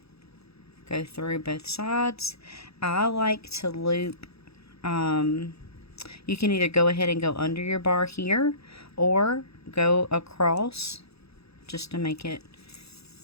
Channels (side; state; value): right; late; 0.78 ms